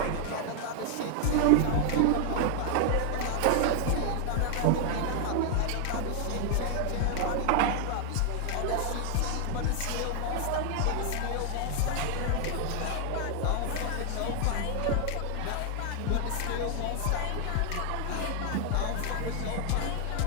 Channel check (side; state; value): both; different; correlation 0.00